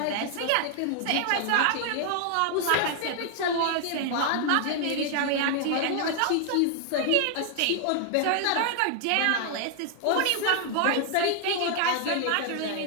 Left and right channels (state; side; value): different; both; correlation 0.00